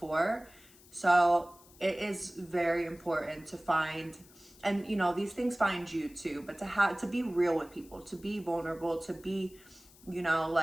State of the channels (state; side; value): noise; left; hiss, 24 dB below the sound